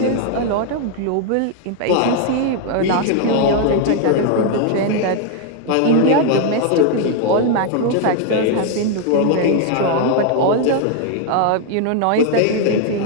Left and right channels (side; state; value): both; different; correlation 0.00